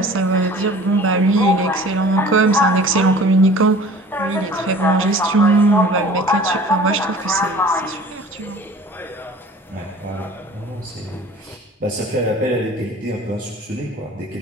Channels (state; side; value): normal; both; correlation 0.46